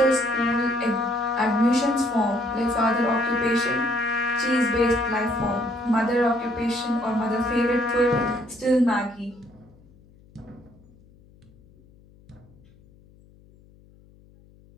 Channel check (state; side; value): noise; left; hum, 27 dB below the sound